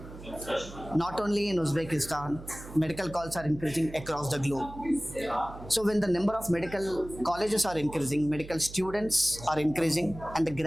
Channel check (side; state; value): right; noise; hum, 15 dB below the sound